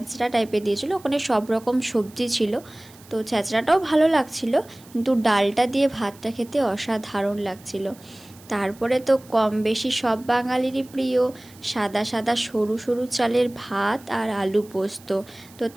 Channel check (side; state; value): right; noise; hiss, 24 dB below the sound